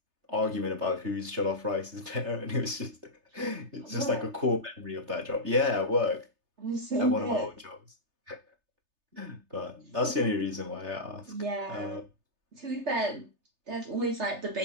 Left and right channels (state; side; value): late; left; 3.3 ms